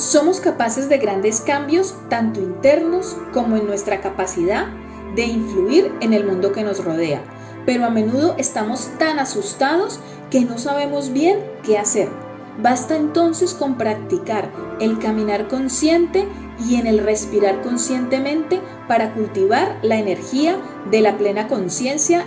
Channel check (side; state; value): both; identical; correlation 1.00